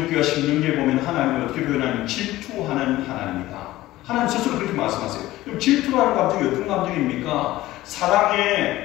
신명기에 보면 하나님을 어떻게 표현하냐면 질투하는 하나님이다. 하나님 스스로 그렇게 말씀하세요. 그럼 질투라는 감정이 어떤 감정입니까?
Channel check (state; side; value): quieter; right; 16.5 dB